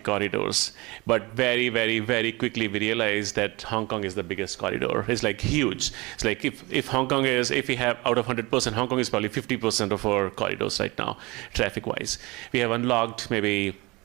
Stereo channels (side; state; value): left; quieter; 24.0 dB